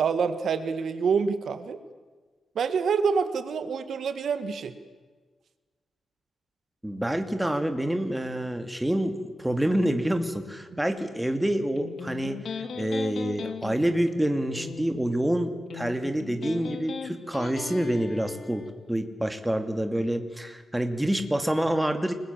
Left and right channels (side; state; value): both; normal; correlation 0.93